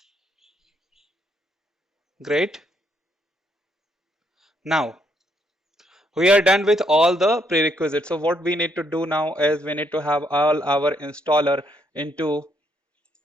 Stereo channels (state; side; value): normal; both; correlation 0.73